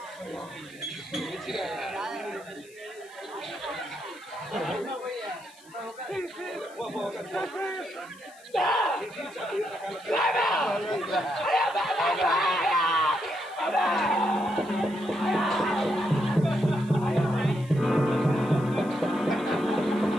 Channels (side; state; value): left; noise; hiss, 25 dB below the sound